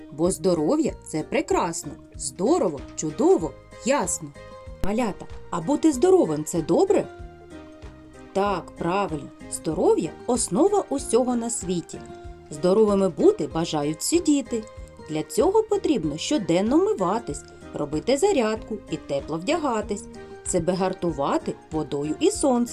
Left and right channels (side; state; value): both; identical; correlation 1.00